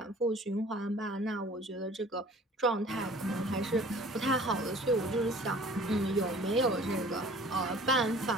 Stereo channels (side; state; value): both; normal; correlation 0.48